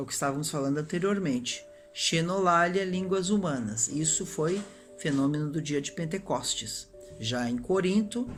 que estávamos falando anteriormente. Xenolalia, línguas humanas. Isso foi fenômeno do dia de Pentecostes. Já em Corinto,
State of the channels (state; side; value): identical; both; correlation 1.00